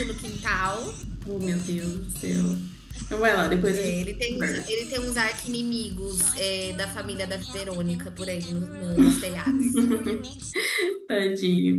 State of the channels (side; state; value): both; identical; correlation 1.00